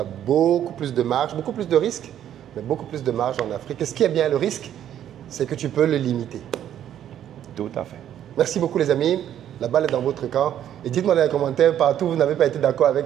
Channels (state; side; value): quieter; left; 10.7 dB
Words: beaucoup plus de marge, beaucoup plus de risques, mais beaucoup plus de marge en Afrique. Et ce qui est bien le risque, c'est que tu peux le limiter. Tout à fait. Merci beaucoup les amis. La balle est dans votre camp. Et dites-moi dans les commentaires, partout où vous n'avez pas été d'accord